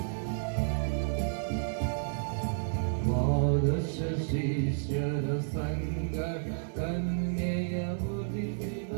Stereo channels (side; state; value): left; silent; 57 dB below the other